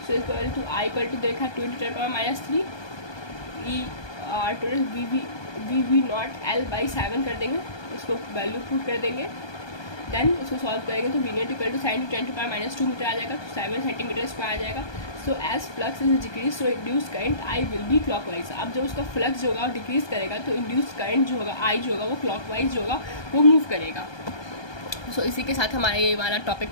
So equal to I equal to देखा 2 × 10⁻³ E/R टोटल V0 L/7 कर देंगे, इसको वैल्यू पुट कर देंगे, देन इसको सॉल्व करेंगे तो V0 equal to sin 10⁻² metre आ जाएगा, तो 7 सेंटीमीटर स्क्वायर आ जाएगा। So as flux is decrease so induced current I will be clockwise. अब जब उसका फ्लक्स जो होगा वो डिक्रीज करेगा तो इंड्यूस्ड करंट जो होगा I जो होगा वो क्लॉकवाइज जो होगा वो मूव करेगा। सो इसी के साथ हमारा ये वाला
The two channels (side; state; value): right; late; 1.2 ms